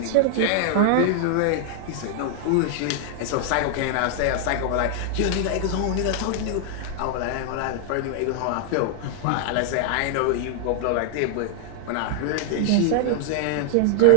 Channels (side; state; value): both; different; correlation 0.00